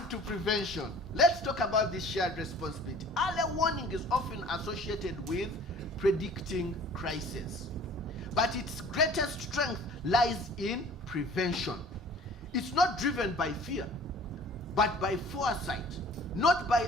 to prevention, let's talk about this shared responsibility. Early warning is often associated with predicting crisis, but its greatest strength lies in prevention. It's not driven by fear, but by foresight, not by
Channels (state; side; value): normal; both; correlation 0.49